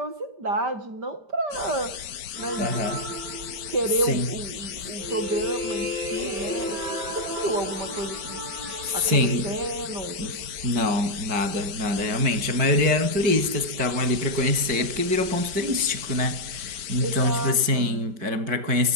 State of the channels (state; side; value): late; left; 5.1 ms